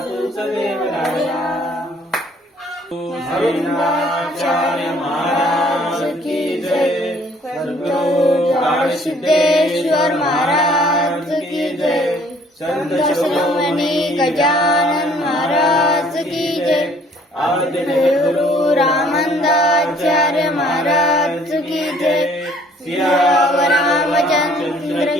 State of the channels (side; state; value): both; normal; correlation 0.59